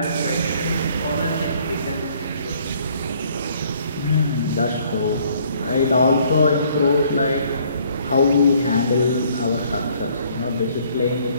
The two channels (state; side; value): inverted; both; correlation -0.62